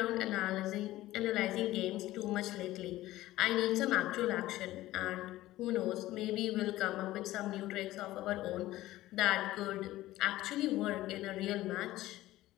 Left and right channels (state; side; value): quieter; right; 16.1 dB